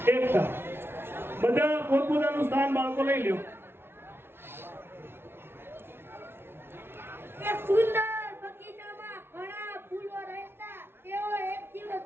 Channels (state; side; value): late; left; 0.11 ms